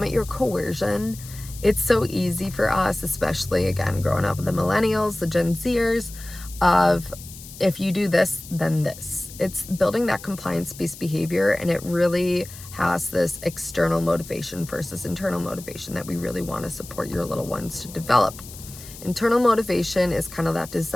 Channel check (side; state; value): left; noise; hiss, 16 dB below the sound